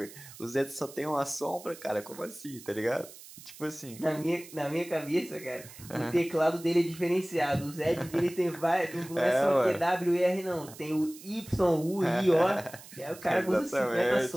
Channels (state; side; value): noise; right; hiss, 18 dB below the sound